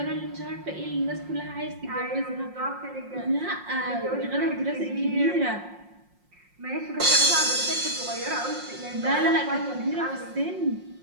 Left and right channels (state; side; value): late; left; 5.6 ms